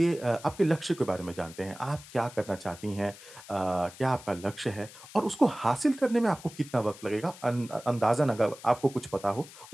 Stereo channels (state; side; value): noise; left; hiss, 18 dB below the sound